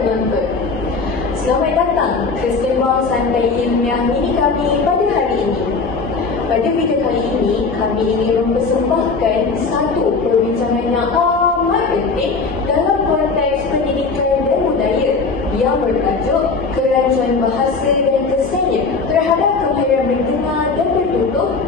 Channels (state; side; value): quieter; right; 4.4 dB